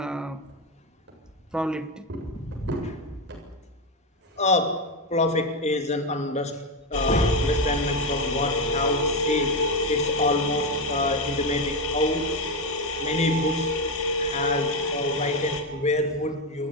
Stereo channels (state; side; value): normal; both; correlation 0.11